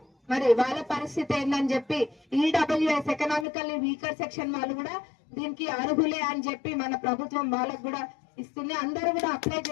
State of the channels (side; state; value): right; drops out; at 3.5 s